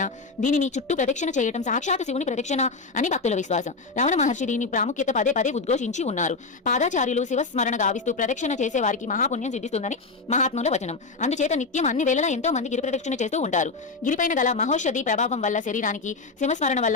దీనిని చుట్టూ ప్రదక్షిణ చేయడం సాక్షాత్ శివుని ప్రదక్షిణ అని భక్తుల విశ్వాసం. రమణ మహర్షి దీని ప్రాముఖ్యత పదే పదే ఉద్ఘోషించి ఉన్నారు. పాదాచార్యులు శివస్మరణ గావిస్తూ ప్రదక్షిణ చేసే వారికి మహాపుణ్యం సిద్ధిస్తుందని మహాత్ముల వచనం. అందుచేత నిత్యం అన్ని వేళలా ఎంతో మంది గిరి ప్రదక్షిణ చేస్తూ ఉంటారు. గిరిపైన గల మహోషధి ప్రభావం వల్ల శరీరానికి, శివస్మరణ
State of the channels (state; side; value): quieter; right; 4.0 dB